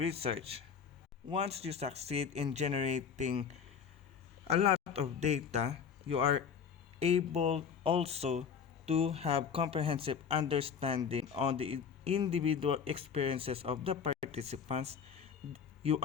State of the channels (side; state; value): right; quieter; 6.9 dB